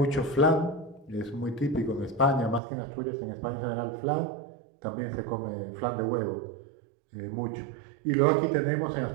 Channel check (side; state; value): left; drops out; at 2.6 s